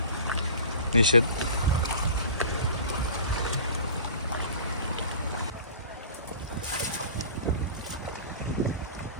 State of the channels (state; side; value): inverted; both; correlation -0.39